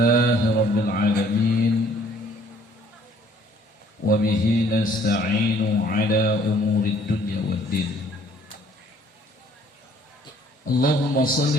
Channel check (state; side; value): normal; both; correlation 0.59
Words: rabbil alamin wa bihi nasta'inu ala umurid dunya waddin. Allahumma